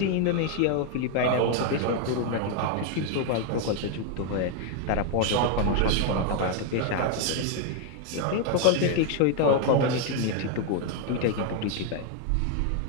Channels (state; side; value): different; both; correlation 0.01